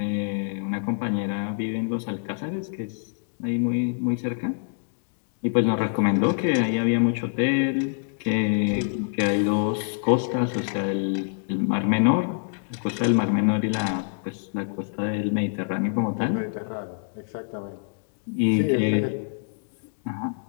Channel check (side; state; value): right; silent; digital silence